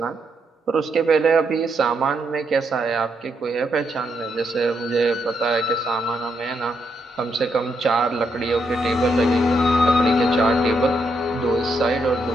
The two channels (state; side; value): normal; both; correlation 0.78